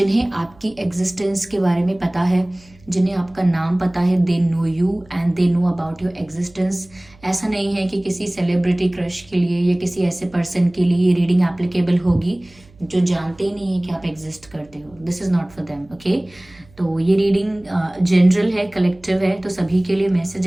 आपकी एग्जिस्टेंस के बारे में पता है, जिन्हें आपका नाम पता है। They know you and they know about your existence. ऐसा नहीं है कि किसी सेलिब्रिटी क्रश के लिए या किसी ऐसे पर्सन के लिए ये रीडिंग एप्लीकेबल होगी जो जानते ही नहीं है कि आप एग्जिस्ट करते हो। This is not for them, okay. तो ये रीडिंग जनरल है, कलेक्टिव है, तो सभी के लिए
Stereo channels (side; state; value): right; noise; hum, 27 dB below the sound